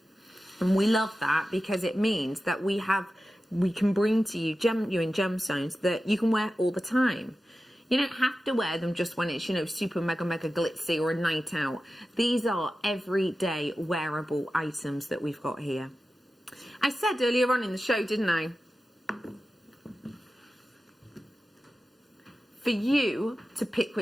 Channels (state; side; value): normal; both; correlation 0.94